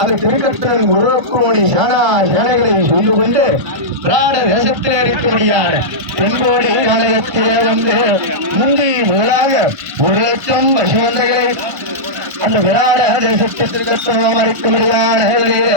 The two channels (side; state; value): left; late; 1.5 ms